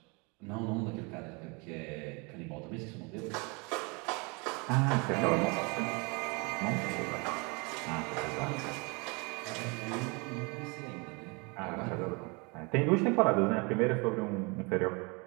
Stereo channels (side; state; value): left; quieter; 30.0 dB